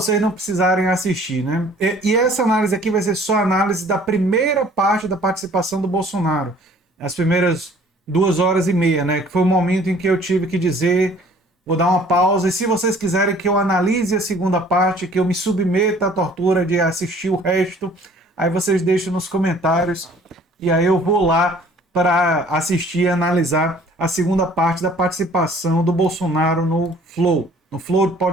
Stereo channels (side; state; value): both; normal; correlation 0.54